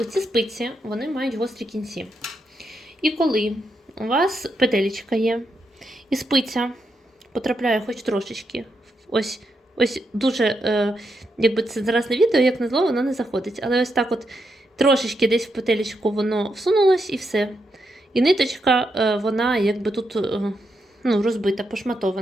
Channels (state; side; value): normal; both; correlation 0.82